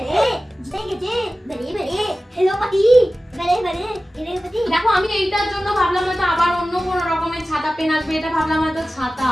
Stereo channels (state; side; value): normal; both; correlation 0.96